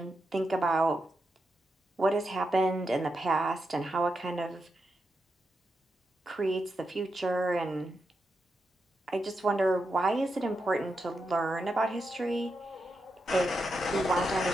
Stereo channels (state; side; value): normal; both; correlation 0.86